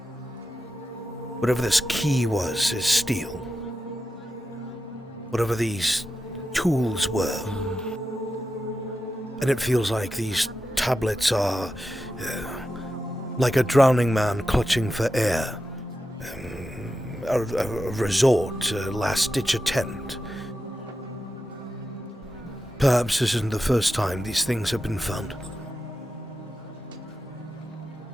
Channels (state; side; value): normal; both; correlation 0.90